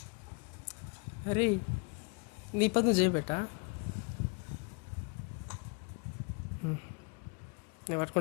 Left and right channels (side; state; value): right; quieter; 32.4 dB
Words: అరే నీ పని నువ్వు చేయబెట్టా, నేను